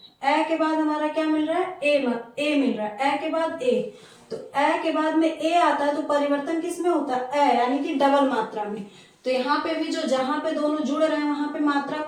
के बाद हमारा क्या मिल रहा है? ए मिल रहा है। ए के बाद ए, तो ए के बाद में ए आता है तो परिवर्तन किस में होता है? ए, यानी कि डबल मात्रा में। तो यहाँ पे भी जो जहां पे दोनों जुड़ रहे हैं वहां पे मात्रा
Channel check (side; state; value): both; identical; correlation 1.00